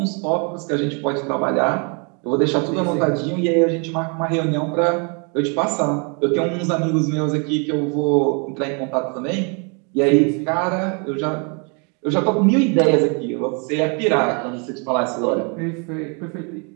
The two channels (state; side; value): quieter; left; 35.6 dB